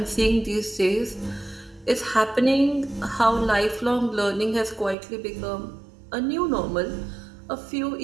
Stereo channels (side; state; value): left; drops out; at 5.0 s